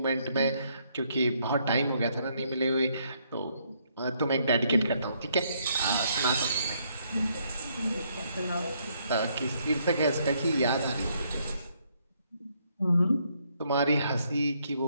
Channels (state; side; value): inverted; both; correlation -0.71